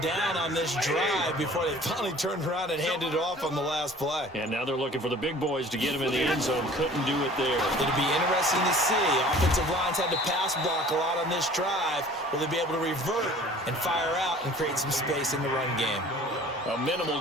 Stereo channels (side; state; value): both; normal; correlation 0.48